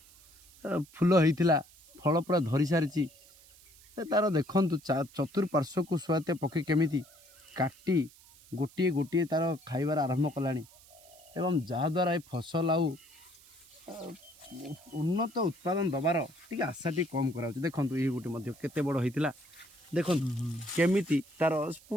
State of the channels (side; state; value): right; noise; hiss, 24 dB below the sound